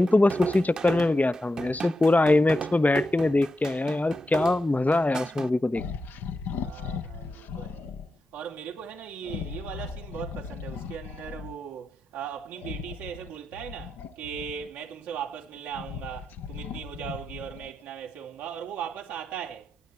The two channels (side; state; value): both; normal; correlation 0.88